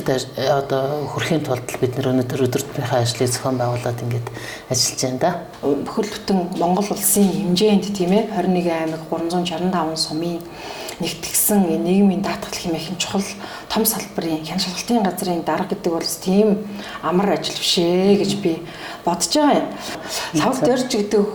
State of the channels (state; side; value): identical; both; correlation 1.00